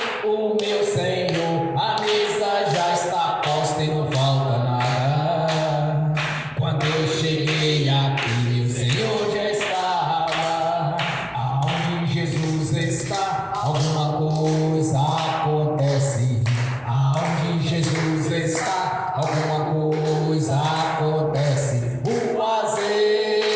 o meu Senhor. A mesa já está posta e não falta nada. Quando eu cheguei aqui, meu Senhor já estava. Aonde Jesus está, alguma coisa acontece. Aonde Jesus está, alguma coisa acontece. O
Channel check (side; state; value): both; identical; correlation 1.00